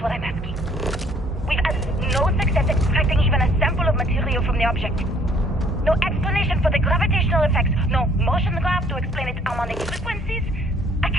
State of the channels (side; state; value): both; normal; correlation 0.61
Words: what I'm asking. We've had no success extracting even a sample of material from the object. No explanation for the gravitational effects. No motion graph to explain its harmonic frequencies. I